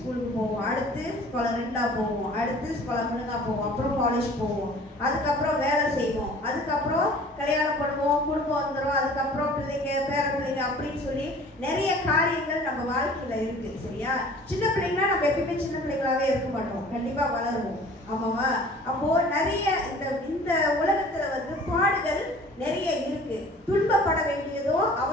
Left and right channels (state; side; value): normal; both; correlation 0.48